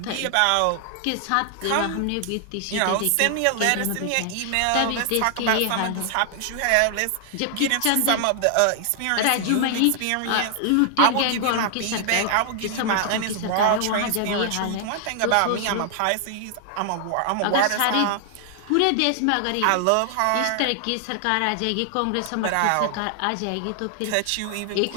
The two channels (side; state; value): both; different; correlation 0.00